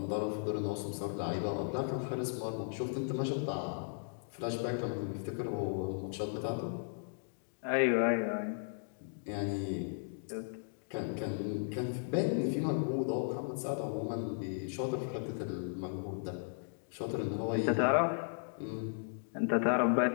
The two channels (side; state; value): right; silent; digital silence